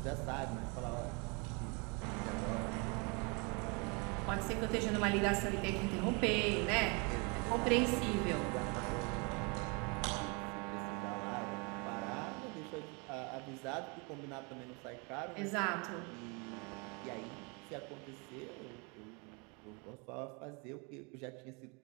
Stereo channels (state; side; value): quieter; left; 31.7 dB